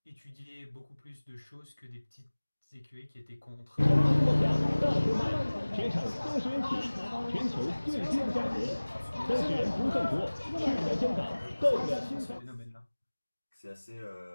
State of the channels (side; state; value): both; inverted; correlation -1.00